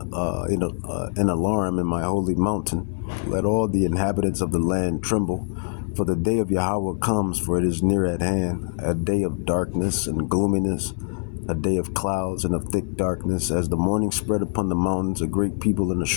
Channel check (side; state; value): right; silent; 63 dB below the other